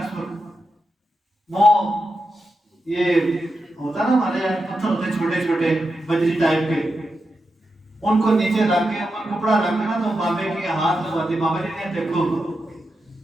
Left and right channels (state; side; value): normal; both; correlation 0.88